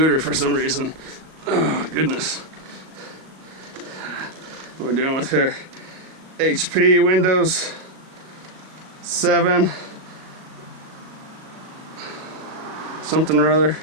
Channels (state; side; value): late; left; 38 ms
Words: for some reason. Oh goodness. What we're dealing with here. HP Windows 7. Something or other.